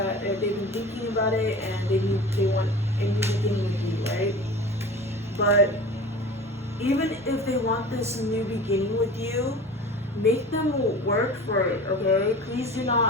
been thinking about it, and they want a new beginning with you, right? But even if they want this new beginning with you, make them work for it, okay? Please do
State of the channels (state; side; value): normal; both; correlation 0.37